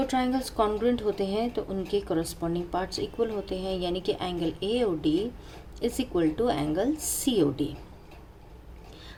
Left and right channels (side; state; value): both; identical; correlation 1.00